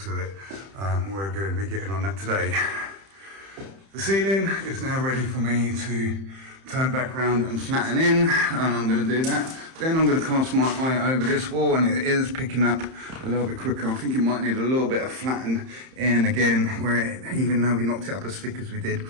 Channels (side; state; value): left; late; 31 ms